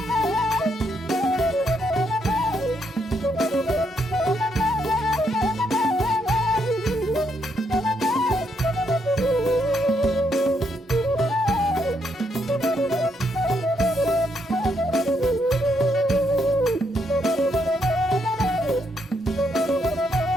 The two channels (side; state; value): both; normal; correlation 0.76